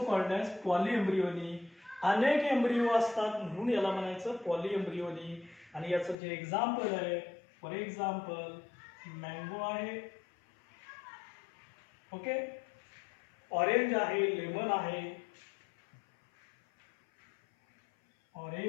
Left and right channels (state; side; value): drops out; right; at 6.2 s